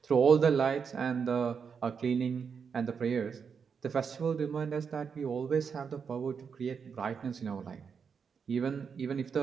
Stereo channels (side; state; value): left; quieter; 6.3 dB